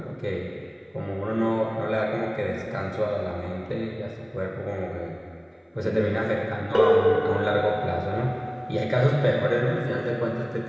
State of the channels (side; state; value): both; identical; correlation 1.00